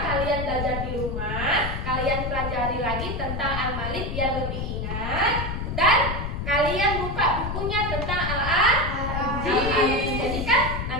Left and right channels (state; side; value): noise; left; rumble, 4 dB below the sound